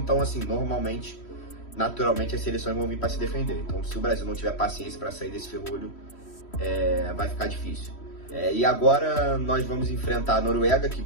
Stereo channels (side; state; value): right; late; 3.1 ms